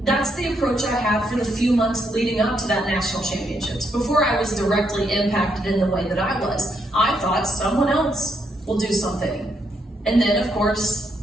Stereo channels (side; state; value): both; normal; correlation 0.77